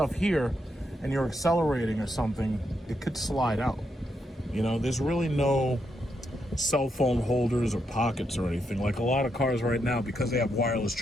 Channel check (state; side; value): normal; both; correlation 0.81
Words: here and you're accelerating or something, it could slide out. You know, there's really no cell phone holders or pockets or anything. Like a lot of cars right now, because they have wireless